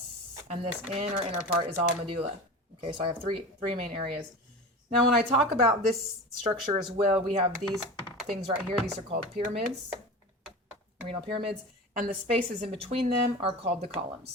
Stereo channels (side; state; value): both; normal; correlation 0.31